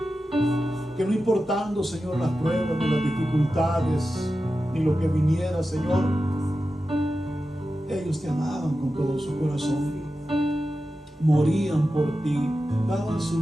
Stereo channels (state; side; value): normal; both; correlation 0.92